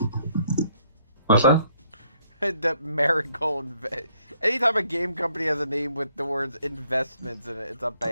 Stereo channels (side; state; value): both; inverted; correlation -0.68